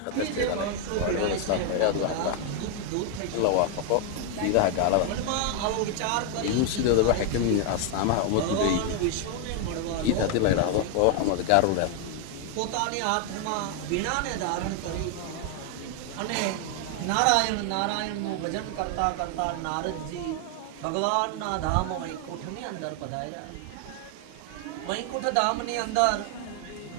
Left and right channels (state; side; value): different; both; correlation 0.01